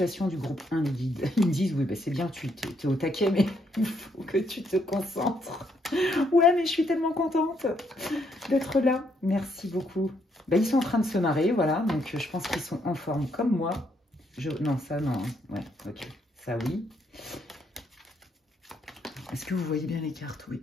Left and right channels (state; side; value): normal; both; correlation 0.73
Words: du groupe 1, les guides? Ils me disent, oui, bah, c'est bien, tu es au taquet, mais il faut que tu te concentres. Ouais, mais je suis tellement contente d'être là. Merci beaucoup. Bah, ils sont en train de se marrer, voilà. Donc, je pense qu'ils sont en forme comme moi. Non, ça, non. Ouais, ok. Ça, oui. Est-ce que vous voyez bien les cartes? Oui,